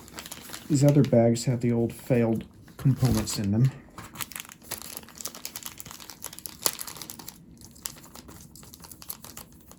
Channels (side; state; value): both; identical; correlation 1.00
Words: These other bags have the old failed components in them.